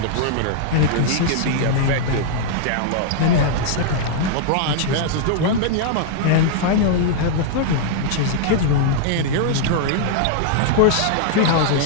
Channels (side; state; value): both; different; correlation -0.01